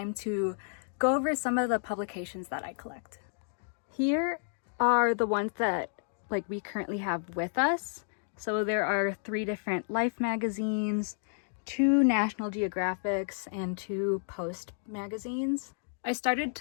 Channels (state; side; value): silent; right; digital silence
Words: to go over some of the publications that I collect. Here are the ones that we currently have with us. So there are 3 different Life magazines, 2 National Geographics, and 2 Post magazines. I started